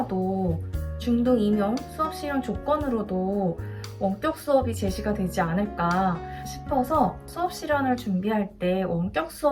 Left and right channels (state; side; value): identical; both; correlation 1.00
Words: 중등 임용 수업 실현 조건으로도 원격 수업이 제시가 되지 않을까 싶어서 수업 실현을 준비할 때 원격